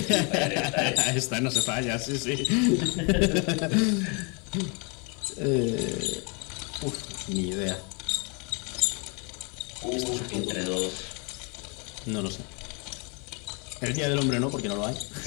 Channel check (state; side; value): quieter; right; 33.4 dB